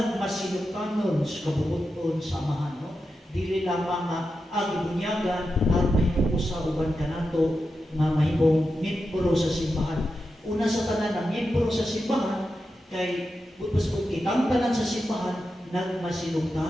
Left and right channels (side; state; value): both; normal; correlation 0.89